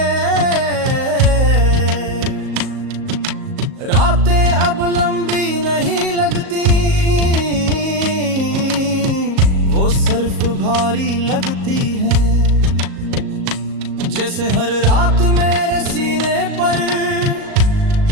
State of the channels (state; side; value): late; left; 38 ms